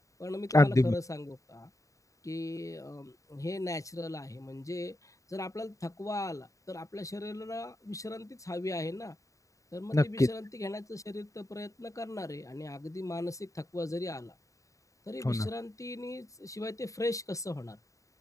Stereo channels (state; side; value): late; right; 0.16 ms